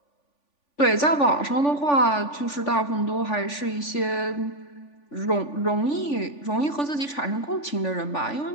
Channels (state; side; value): late; right; 3.5 ms